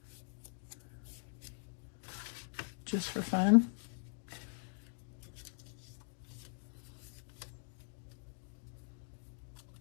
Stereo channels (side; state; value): right; silent; digital silence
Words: just for fun.